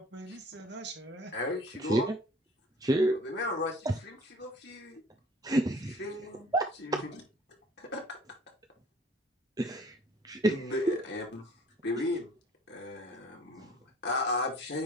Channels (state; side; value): normal; both; correlation 0.52